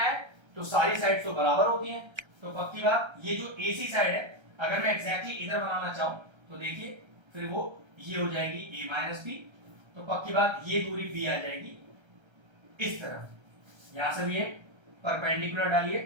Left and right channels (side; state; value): left; late; 1.3 ms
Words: है तो सारी साइड्स तो बराबर होती हैं, तो पक्की बात ये जो AC साइड है अगर मैं एग्जैक्टली इधर बनाना चाहूं तो देखिए फिर वो ये हो जाएगी a माइनस बी, तो पक्की बात ये दूरी b आ जाएगी इस तरफ। यहां से भी एक परपेंडिकुलर डालिए